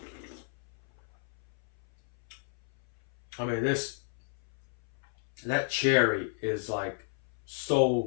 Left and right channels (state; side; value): silent; right; 56 dB below the other